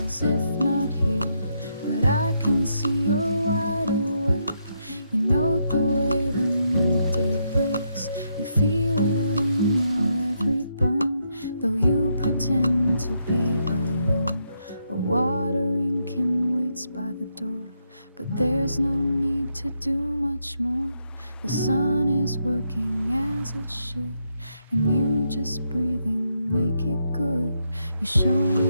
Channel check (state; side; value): inverted; both; correlation -0.79